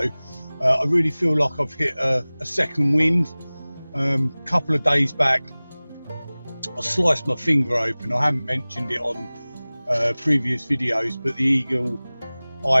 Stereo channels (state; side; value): inverted; both; correlation -0.99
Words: I really feel like I've hit a second wind. Couple of days back, I sliced my finger open. I haven't mentioned it on previous videos, but the